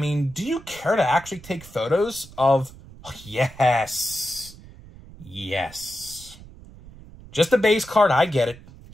do you care to actually take photos of... Oh, yes. Yes. Just a base card, I get it.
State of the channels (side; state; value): right; noise; rumble, 19 dB below the sound